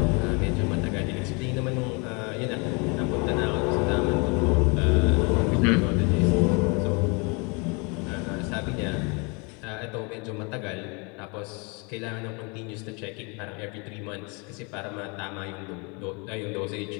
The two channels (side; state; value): right; quieter; 31.4 dB